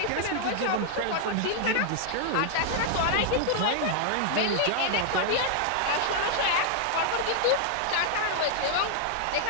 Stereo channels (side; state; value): both; different; correlation 0.00